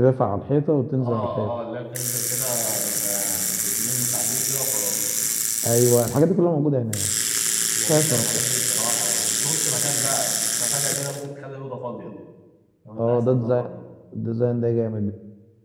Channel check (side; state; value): both; identical; correlation 1.00